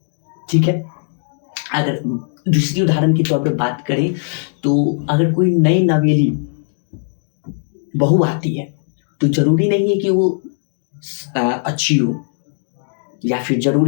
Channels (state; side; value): silent; right; digital silence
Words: ठीक है, अगर दूसरी उदाहरण के तौर पे बात करें तो अगर कोई नई नवेली बहू आती है तो जरूरी नहीं है कि वो अच्छी हो, या फिर